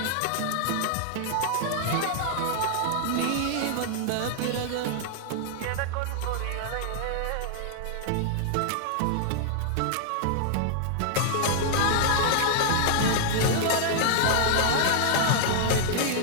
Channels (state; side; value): different; both; correlation -0.01